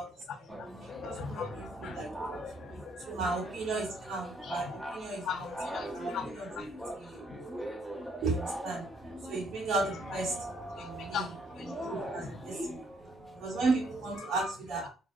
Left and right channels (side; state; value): both; normal; correlation 0.68